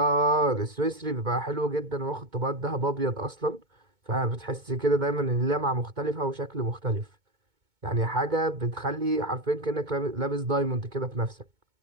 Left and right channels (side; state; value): left; late; 2.2 ms